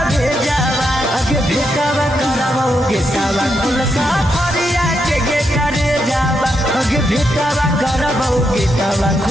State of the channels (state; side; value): normal; both; correlation 0.81